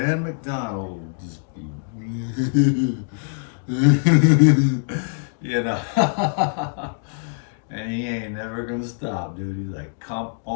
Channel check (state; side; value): silent; right; digital silence